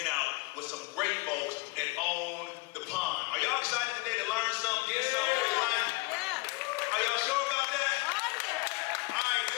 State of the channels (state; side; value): quieter; right; 25.3 dB